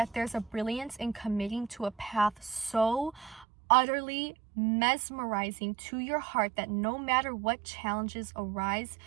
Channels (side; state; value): left; drops out; at 3.5 s